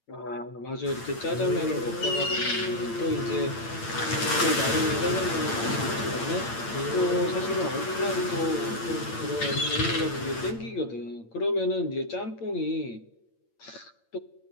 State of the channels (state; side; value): late; right; 8.8 ms